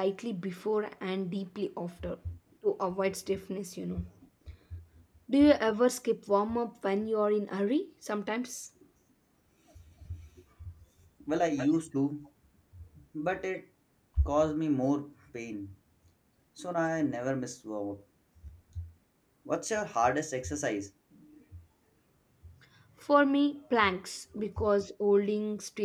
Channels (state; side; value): identical; both; correlation 1.00